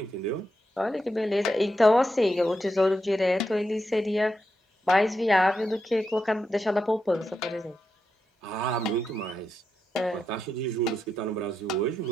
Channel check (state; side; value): normal; both; correlation 0.85